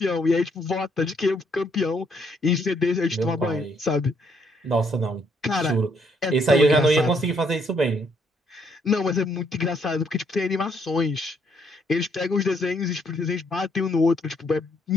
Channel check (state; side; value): normal; both; correlation 0.70